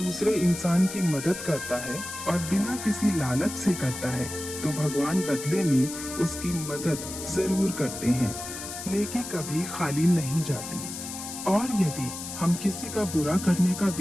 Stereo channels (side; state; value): left; noise; hiss, 9 dB below the sound